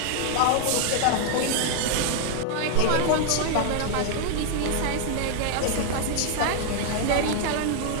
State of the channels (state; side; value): different; both; correlation 0.00